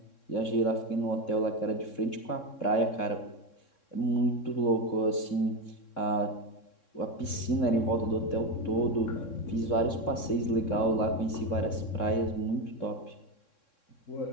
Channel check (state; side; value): late; right; 3.6 ms